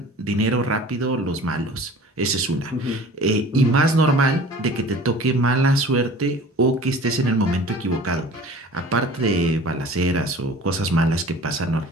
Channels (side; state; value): both; normal; correlation 0.44